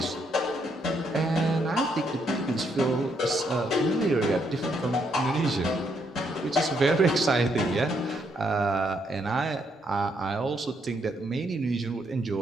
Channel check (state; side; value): normal; both; correlation 0.75